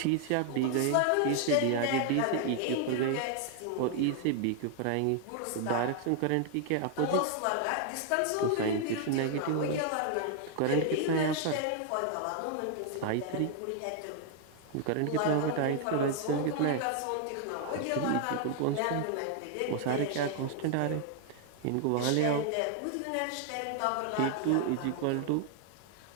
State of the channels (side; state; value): both; different; correlation 0.00